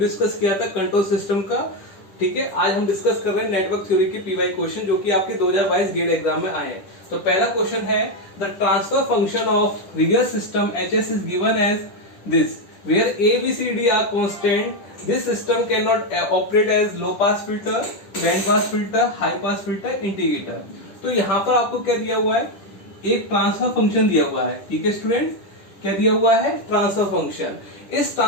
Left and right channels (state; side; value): late; right; 10 ms